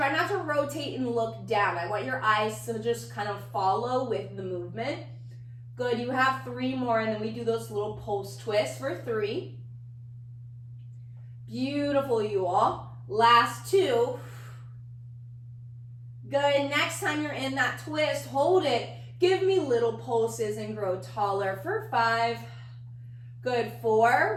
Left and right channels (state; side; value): identical; both; correlation 1.00